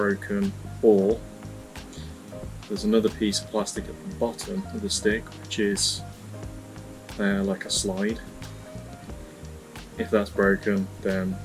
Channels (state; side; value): identical; both; correlation 1.00